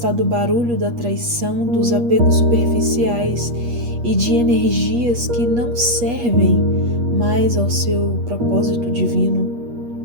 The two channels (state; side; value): late; left; 8.4 ms